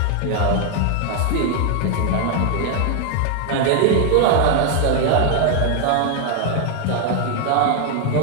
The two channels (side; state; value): both; different; correlation 0.00